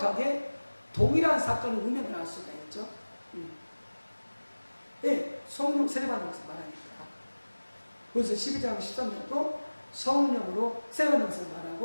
동일한 사건을 의미를 알 수가 있죠. 예, 성령 세례 받는 것을 말하니까. 그래서 12장 13절도 성령으로 세례 받는 것을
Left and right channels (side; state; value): both; inverted; correlation -1.00